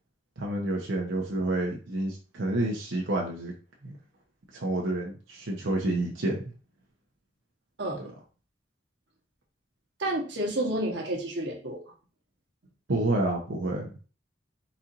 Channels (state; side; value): normal; both; correlation 0.50